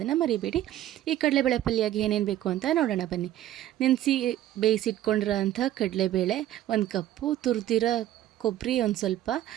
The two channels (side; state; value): left; quieter; 13.1 dB